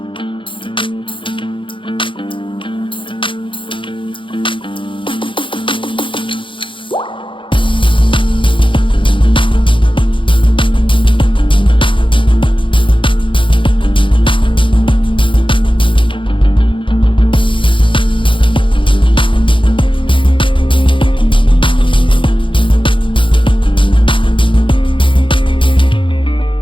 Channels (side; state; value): right; late; 0.25 ms